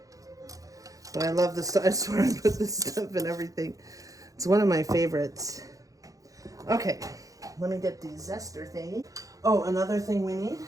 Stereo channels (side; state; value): left; late; 0.17 ms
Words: But I love this stuff. I swear I put this stuff in everything. It's one of my favorites. Okay, let me get the zester thingy. Oh, another thing we need,